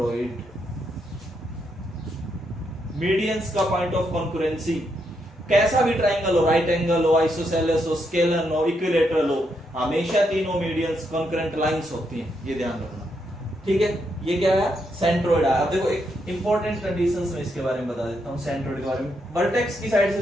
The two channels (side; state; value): both; normal; correlation 0.79